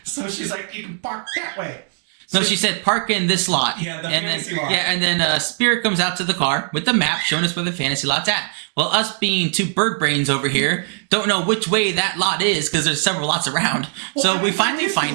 So she's like, you can park that way. So she said, park in this lot. Yeah, the fantasy lot. Yeah, and then Spirit comes out to the car with the map showing us where the fantasy lot's at. Well, us being two bird brains over here don't know which way that lot is because there's several lots around. Well, so I mean, we finally find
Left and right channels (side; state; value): left; silent; 62 dB below the other